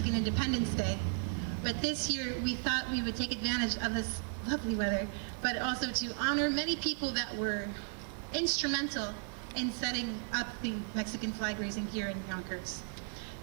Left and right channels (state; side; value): silent; left; 54 dB below the other